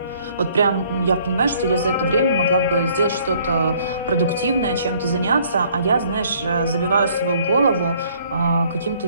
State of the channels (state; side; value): inverted; both; correlation -0.60